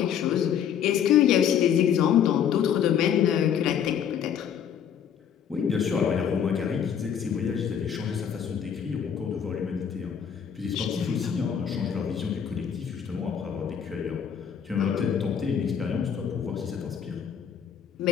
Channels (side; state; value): right; quieter; 8.3 dB